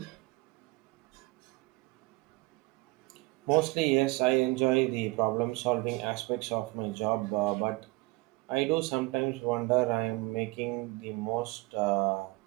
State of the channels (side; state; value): left; quieter; 23.8 dB